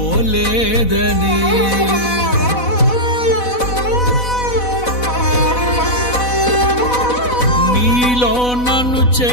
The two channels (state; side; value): late; right; 4.1 ms